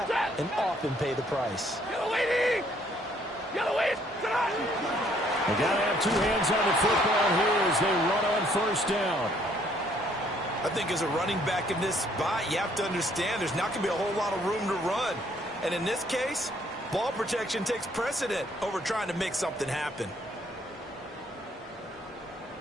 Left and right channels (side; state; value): both; normal; correlation 0.65